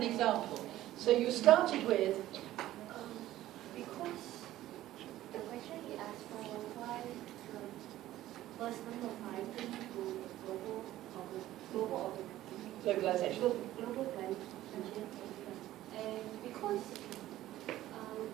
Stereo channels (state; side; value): quieter; left; 14.5 dB